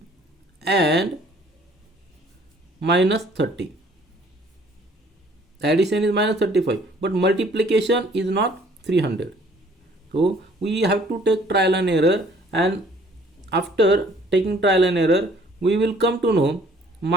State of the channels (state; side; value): normal; both; correlation 0.57